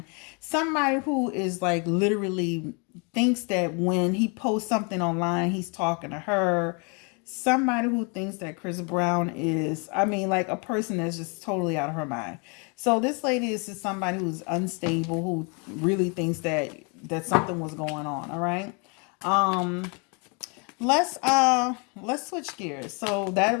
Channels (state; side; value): quieter; right; 33.9 dB